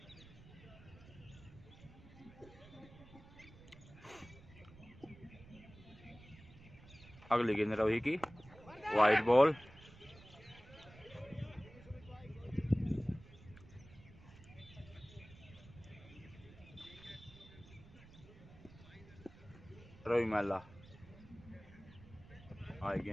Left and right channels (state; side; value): noise; right; rumble, 19 dB below the sound